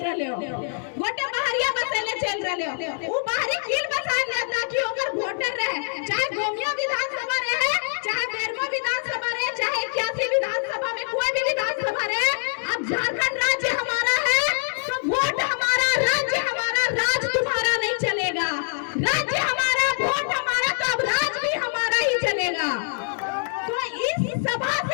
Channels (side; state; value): right; silent; digital silence